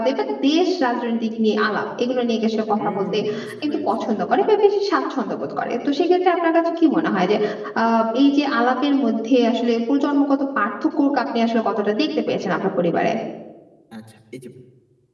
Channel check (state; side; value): identical; both; correlation 1.00